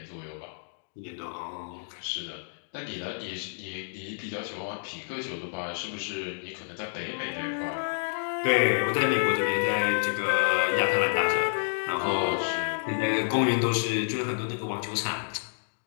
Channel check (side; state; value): right; silent; digital silence